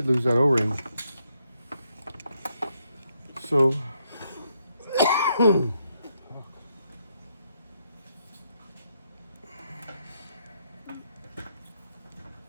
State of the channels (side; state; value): both; inverted; correlation -0.77